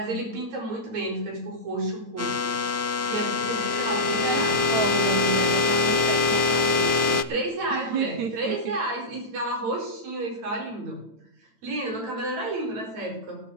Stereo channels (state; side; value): late; left; 9.0 ms